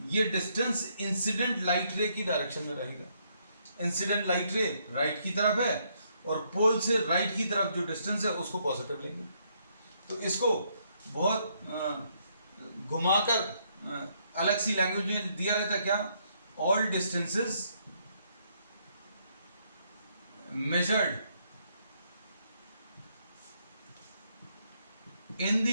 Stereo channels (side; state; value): both; inverted; correlation -0.72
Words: ये डिस्टेंस इंसिडेंट लाइट रे की डायरेक्शन में रहेगा. इंसिडेंट लाइट रे राइट की तरफ है और पोल से राइट की तरफ जो डिस्टेंस है उसको पॉजिटिव लेंगे. तो इसको बहुत घुमाकर अलग सी लैंग्वेज में दिया रहता है क्या? All distances measured in